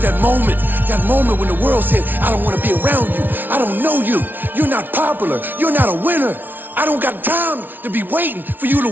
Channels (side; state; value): left; late; 0.090 ms